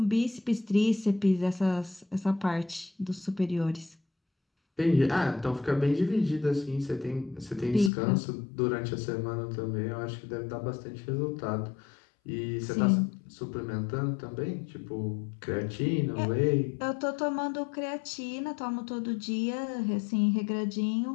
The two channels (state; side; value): drops out; right; at 7.9 s